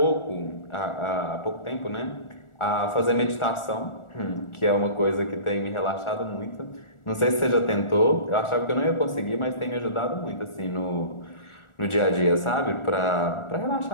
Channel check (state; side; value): late; right; 1.4 ms